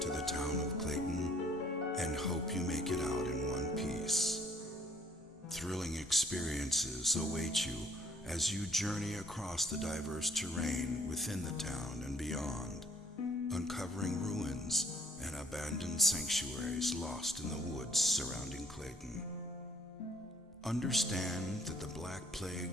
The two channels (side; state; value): both; normal; correlation 0.60